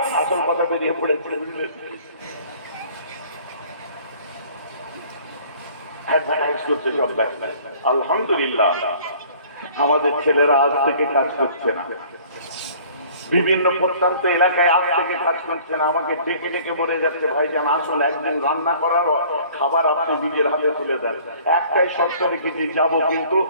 আসল কথা বেরিয়ে পড়েছে। আলহামদুলিল্লাহ আমাদের ছেলেরা আজ থেকে কাজ করছে না, বিভিন্ন প্রত্যন্ত এলাকায় আজ থেকে কাজ করছে না। আমাকে ডেকে ডেকে বলে যাচ্ছে ভাইজান আসলে একদিন রান্না করার খাবার আপনি নিজের হাতে তুলে দেন। একটাই শর্ত রেখেছি, যাবো, কিন্তু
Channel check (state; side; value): inverted; both; correlation -0.52